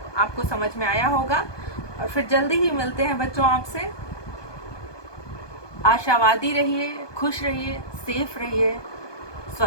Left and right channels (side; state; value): right; late; 1.2 ms